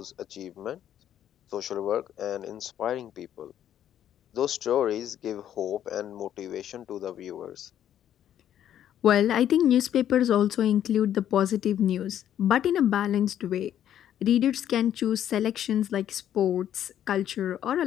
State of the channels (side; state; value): right; quieter; 10.6 dB